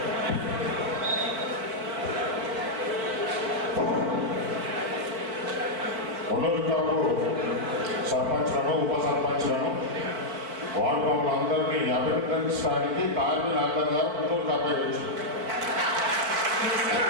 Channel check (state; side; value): late; left; 4.6 ms